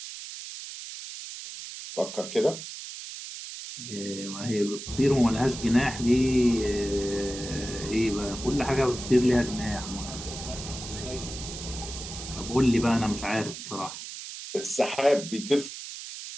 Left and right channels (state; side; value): noise; right; hiss, 10 dB below the sound